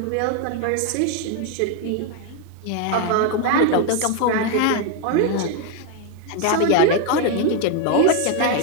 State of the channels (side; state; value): both; different; correlation 0.01